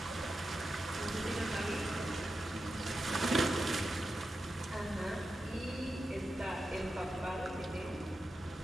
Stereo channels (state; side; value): normal; both; correlation 0.90